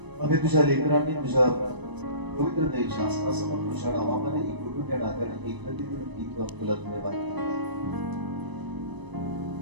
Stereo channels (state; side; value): late; left; 1.0 ms